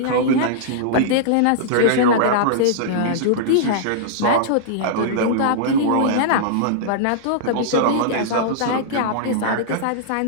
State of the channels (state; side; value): different; both; correlation -0.02